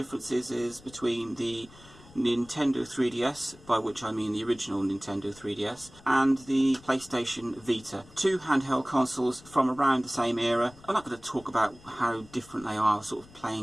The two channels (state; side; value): noise; left; rumble, 23 dB below the sound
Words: is between the Nintendo 3DS, by which I mean the original Nintendo 3DS, and the PlayStation Vita. Two handheld consoles from around the same era. I'm not going to talk about how different they are, sort of